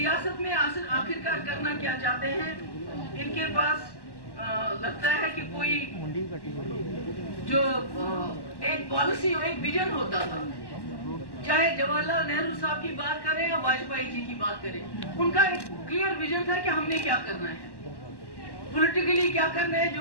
میں آخرکار کرنا کیا چاہتے ہیں. ان کے پاس لگتا ہے کہ کوئی جو ایک پالیسی اور ایک ویژن ہوتا تھا، چاہے جواہر لال نہرو صاحب کی بات کریں یا واجپئی جی کی بات کریں، ان کا ایک کلیئر ویژن تھا کہ ہم نے کیا کرنا ہے، پولیٹیکلی کیا کرنا ہے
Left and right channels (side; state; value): right; late; 1.1 ms